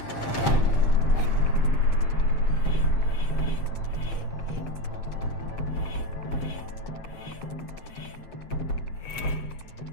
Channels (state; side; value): late; right; 7.5 ms